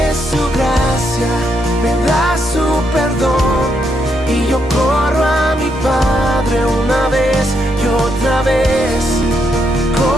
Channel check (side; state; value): both; normal; correlation 0.78